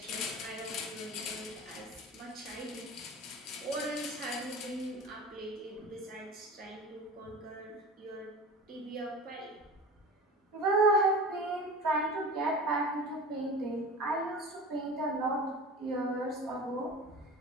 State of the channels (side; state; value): both; normal; correlation 0.34